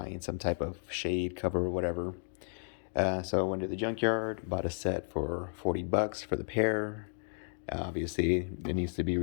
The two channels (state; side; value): silent; right; digital silence